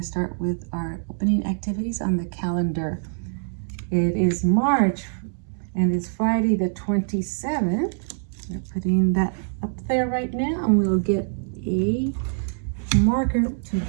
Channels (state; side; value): silent; left; digital silence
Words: to start with our opening activities on the calendar. It is March, and it's Friday the 27th. We're putting that up there right now, and we'll get a marker to